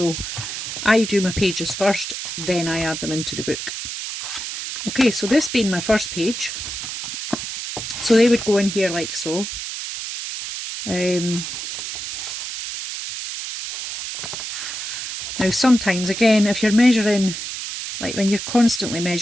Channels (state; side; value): noise; right; hiss, 6 dB below the sound